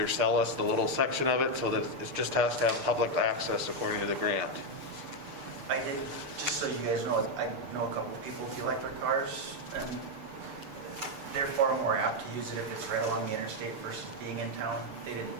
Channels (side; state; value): left; late; 6.8 ms